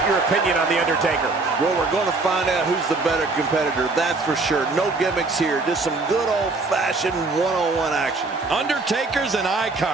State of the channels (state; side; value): quieter; left; 3.6 dB